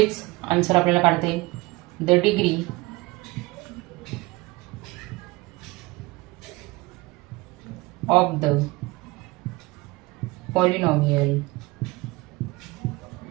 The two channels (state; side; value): quieter; left; 22.2 dB